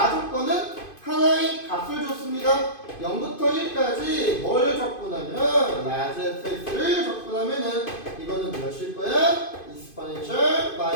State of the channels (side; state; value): right; late; 2.5 ms